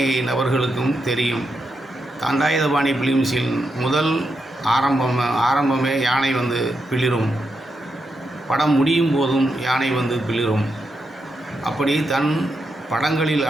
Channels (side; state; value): both; normal; correlation 0.84